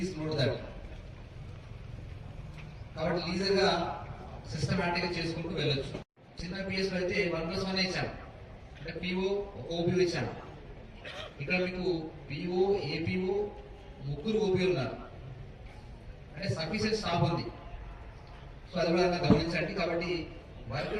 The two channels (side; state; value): both; identical; correlation 1.00